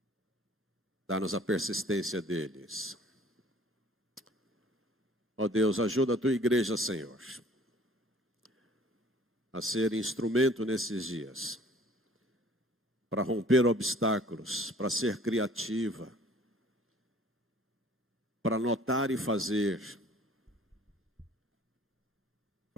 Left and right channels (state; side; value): normal; both; correlation 0.53